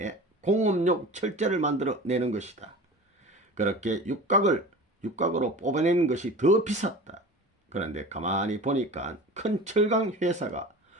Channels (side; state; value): both; normal; correlation 0.36